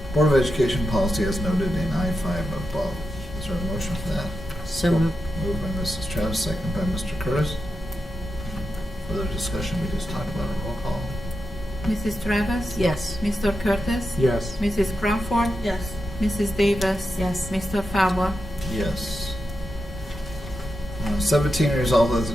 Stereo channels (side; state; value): both; normal; correlation 0.88